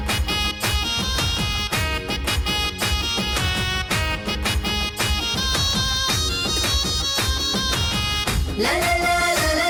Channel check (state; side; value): identical; both; correlation 1.00